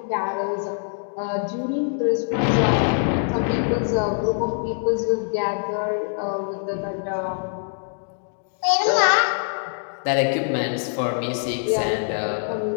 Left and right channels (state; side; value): silent; right; digital silence